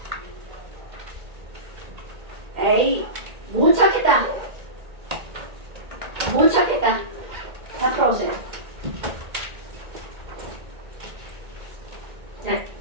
에이, 못 찾겠다. 다 풀어보세요. 네.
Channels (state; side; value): late; left; 1.8 ms